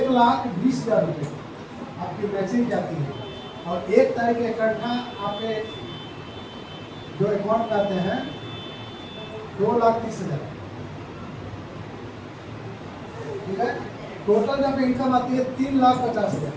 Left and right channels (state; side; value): identical; both; correlation 1.00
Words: रुपये आपकी मैचिंग जाती है। और 1 तारीख इकट्ठा आपके जो अकाउंट करते हैं 2,30,000, ठीक है। टोटल जब इनकम आती है 3,50,000।